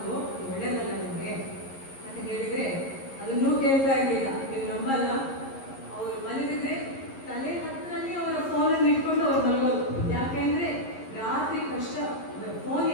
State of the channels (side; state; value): right; late; 11 ms